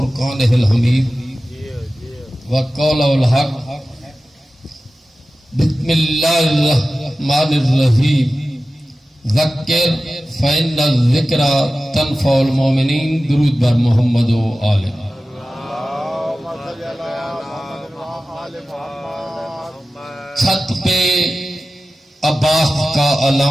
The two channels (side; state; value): both; normal; correlation 0.95